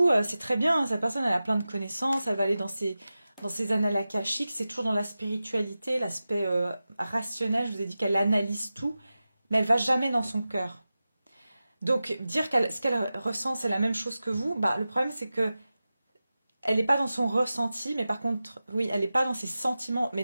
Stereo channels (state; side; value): inverted; both; correlation -0.94